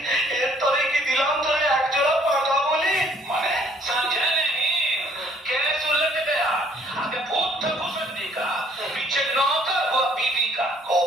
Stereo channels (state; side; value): normal; both; correlation 0.61